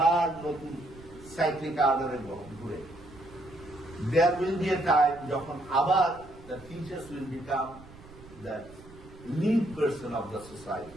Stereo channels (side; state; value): right; noise; rumble, 20 dB below the sound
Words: নতুন সাইক্লিক আর্ডারে ঘুরে। There will be a time যখন আবার the teachers will become the lead person of the